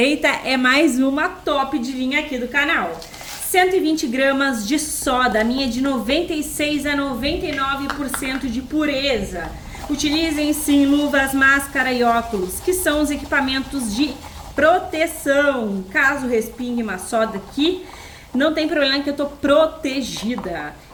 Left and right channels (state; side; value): identical; both; correlation 1.00